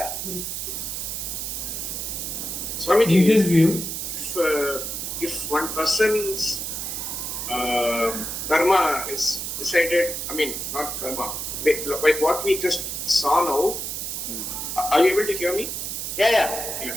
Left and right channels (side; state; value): right; noise; hiss, 4 dB below the sound